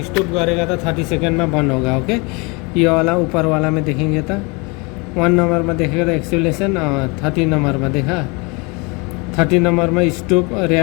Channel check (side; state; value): right; quieter; 29.0 dB